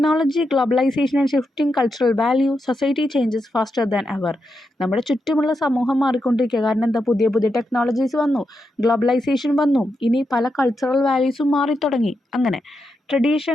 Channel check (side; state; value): both; normal; correlation 0.85